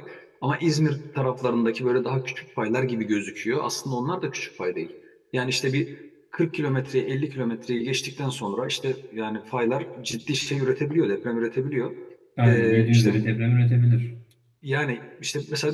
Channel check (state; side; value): identical; both; correlation 1.00